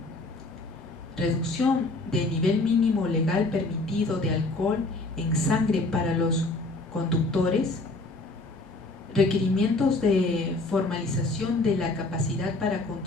reducción del nivel mínimo legal permitido de alcohol en sangre para los conductores, requerimientos de formalización de la capacidad para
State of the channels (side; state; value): right; quieter; 3.0 dB